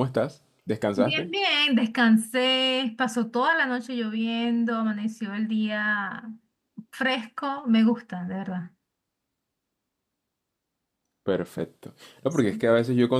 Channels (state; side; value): identical; both; correlation 1.00